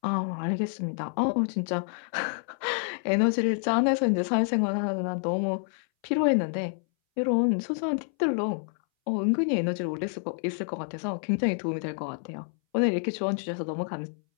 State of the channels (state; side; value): silent; right; 59 dB below the other